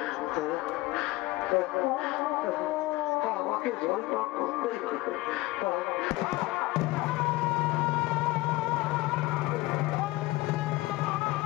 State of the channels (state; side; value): quieter; right; 20.0 dB